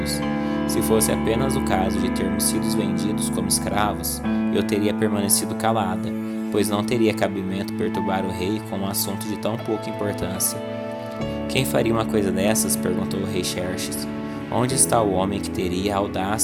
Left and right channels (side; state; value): both; identical; correlation 1.00